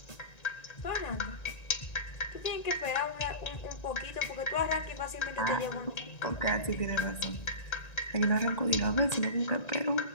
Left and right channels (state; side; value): late; right; 1.9 ms